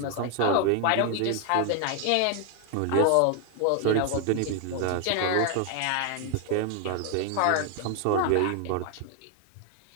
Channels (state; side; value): different; both; correlation 0.00